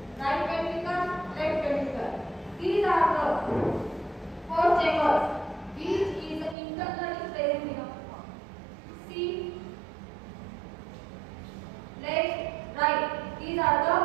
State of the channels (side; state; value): left; drops out; at 6.6 s